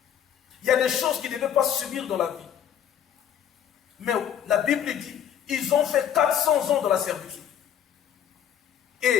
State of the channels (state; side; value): quieter; right; 9.4 dB